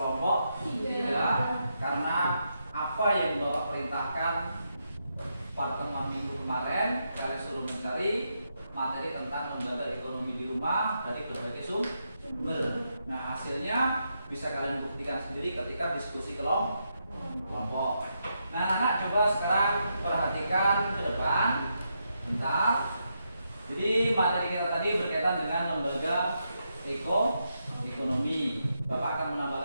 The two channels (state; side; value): inverted; both; correlation -0.82